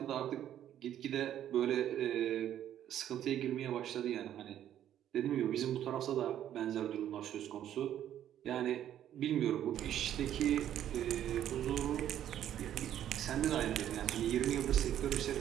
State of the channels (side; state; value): left; quieter; 11.0 dB